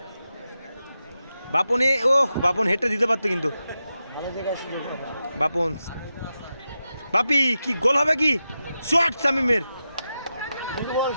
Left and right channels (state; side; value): inverted; both; correlation -0.90